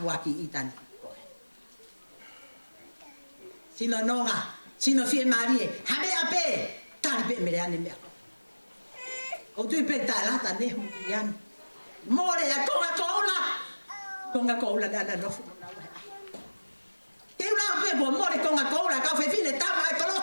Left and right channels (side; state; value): both; inverted; correlation -1.00